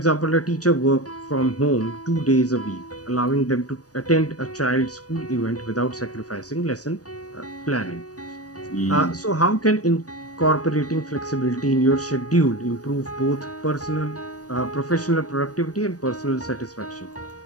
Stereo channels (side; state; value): right; late; 0.67 ms